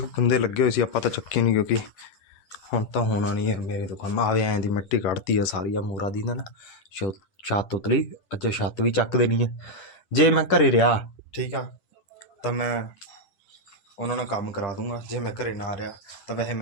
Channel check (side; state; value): right; late; 10 ms